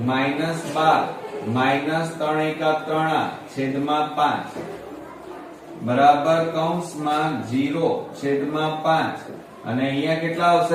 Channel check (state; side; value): identical; both; correlation 1.00